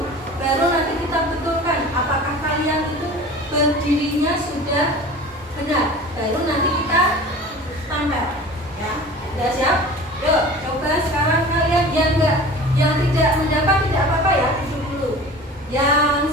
baru nanti kita betulkan apakah kalian itu berdirinya sudah benar. Baru nanti kita tampil. Ya, sudah siap? Yuk, coba sekarang kalian yang tidak mendapat tidak apa-apa ya, duduk dulu.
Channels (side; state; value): both; normal; correlation 0.39